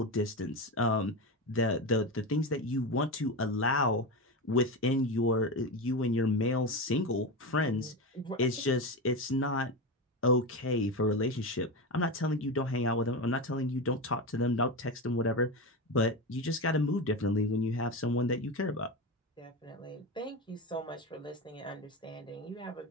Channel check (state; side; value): normal; both; correlation 0.19